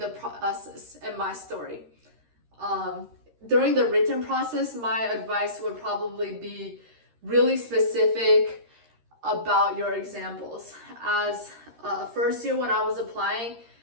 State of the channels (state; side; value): late; left; 13 ms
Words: process and my story. During the written process, my advice would probably be really specific about your examples. As first year when I was applying,